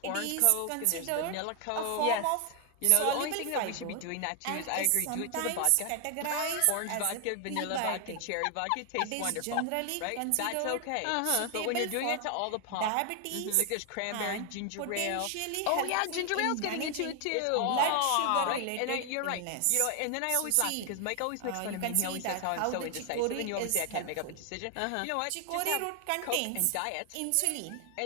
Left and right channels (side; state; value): both; different; correlation 0.00